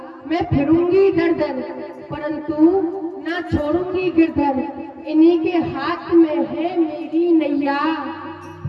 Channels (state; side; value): identical; both; correlation 1.00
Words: मैं फिरूंगी दर दर, परंतु ना छोड़ूंगी गिरधर। इन्हीं के हाथ में है मेरी नैया।